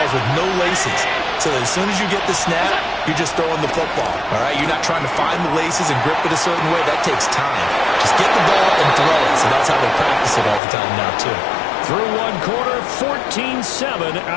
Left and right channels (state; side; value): drops out; right; at 10.6 s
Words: with no laces. So that as soon as you get the snap, you're just throwing the football. All right? You're not trying to find the laces and grip it a certain way. That takes time. Just get the ball and throw it. So that's how they practice it all the time now, too. Through one quarter, 14-7